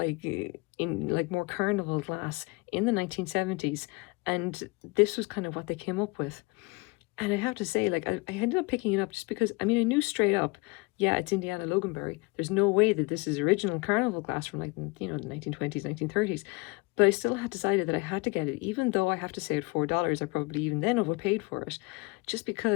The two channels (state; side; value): quieter; right; 26.5 dB